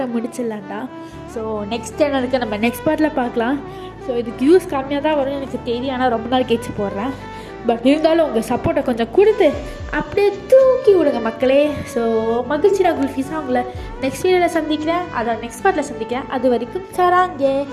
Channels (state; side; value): identical; both; correlation 1.00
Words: முடிச்சிடலாண்டா. ஸோ நெக்ஸ்ட் சேனலுக்கு நம்ம நெக்ஸ்ட் பார்ட்டில் பார்க்கலாம். ஸோ இதுக்கு வியூஸ் கம்மியாக தான் வரும்னு எனக்கு தெரியும், ஆனால் ரொம்ப நாள் கழிச்சு போடுறேன். பட் இருந்தாலும் உங்கள் சப்போர்ட்டை கொஞ்சம் கொடுத்து அப்படியே தூக்கி விடுங்க மக்களே. ஸோ மகிழ்ச்சியா குல்ஃபீஸாக உங்களை நெக்ஸ்ட் வீடியோவில் சந்திக்கிறேன், அதை நெக்ஸ்ட் பார்ட்டில் சந்திக்கிறேன். அது வரைக்கும் சராங்கே